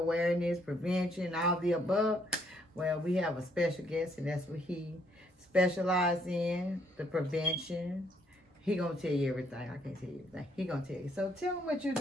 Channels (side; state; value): both; normal; correlation 0.69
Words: prevention, all the above. Well, we have a special guest, and that's what he specializes in, the prevention. He gonna tell you everything. I can't tell you everything. He gonna tell you. So tell him what you